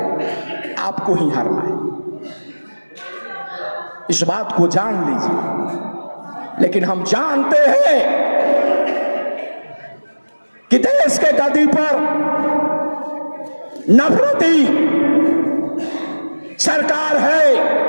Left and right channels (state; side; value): inverted; both; correlation -1.00